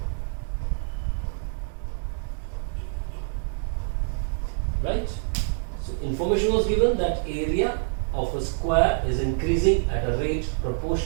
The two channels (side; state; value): left; silent; digital silence